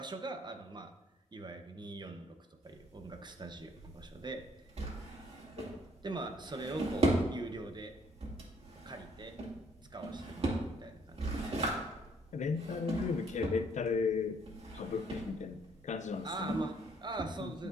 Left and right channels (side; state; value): both; normal; correlation 0.65